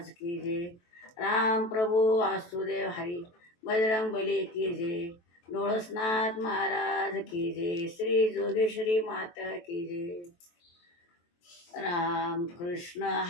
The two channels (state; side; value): late; right; 23 ms